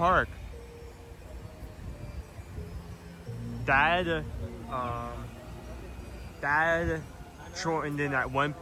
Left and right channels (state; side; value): identical; both; correlation 1.00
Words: Dad shortened in at one